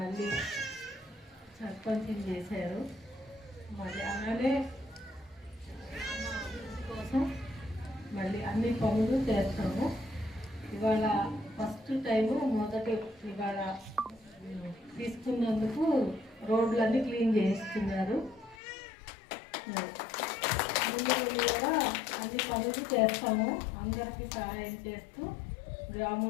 సర్పంచ్ చేశారు. మళ్ళీ అలానే కోసం మళ్ళీ అన్ని పనులు చేస్తాము. ఇవాళ ఫస్ట్ టైము ఇవాళ తీసుకున్నందుకు రోడ్లన్నీ క్లీన్ చేస్తున్నారు. ముందు కూడా అన్ని పనులు చేస్తాము. అందరికీ సహాయం చేస్తూ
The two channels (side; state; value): right; drops out; at 18.6 s